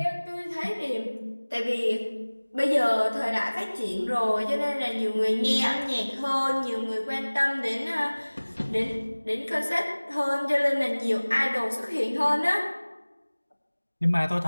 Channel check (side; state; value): both; inverted; correlation -1.00